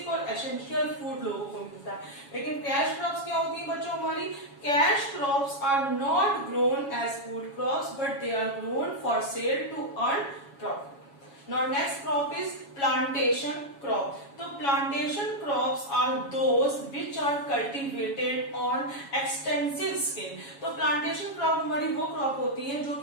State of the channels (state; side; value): late; right; 7.2 ms